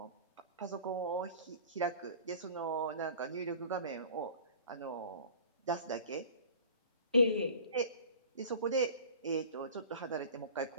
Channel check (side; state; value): both; inverted; correlation -0.43